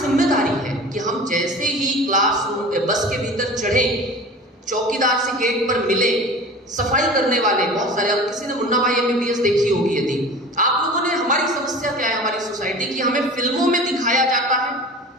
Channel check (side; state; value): both; normal; correlation 0.38